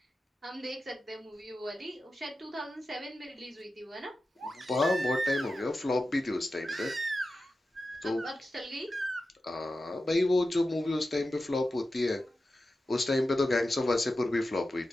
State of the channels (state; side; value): normal; both; correlation 0.92